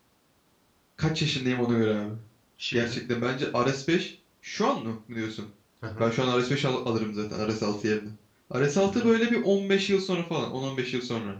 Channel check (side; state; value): both; identical; correlation 1.00